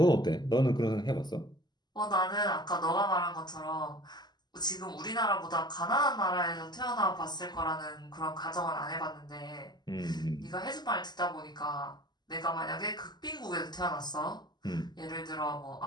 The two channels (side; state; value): right; late; 0.21 ms